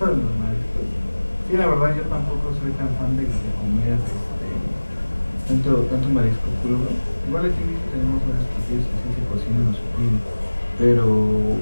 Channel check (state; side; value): inverted; both; correlation -1.00